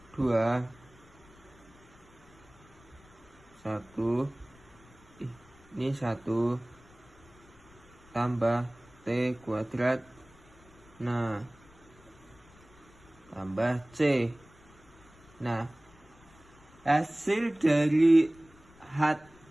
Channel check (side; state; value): left; noise; rumble, 25 dB below the sound